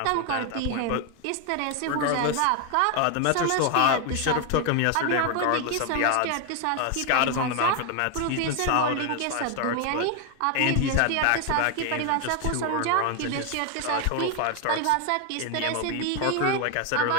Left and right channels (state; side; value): different; both; correlation 0.01